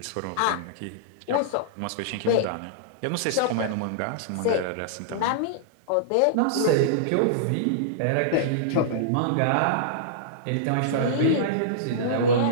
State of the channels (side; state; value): both; different; correlation -0.02